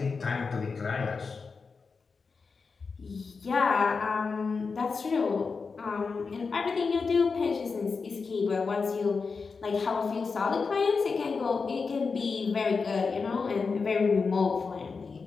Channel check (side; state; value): right; quieter; 4.8 dB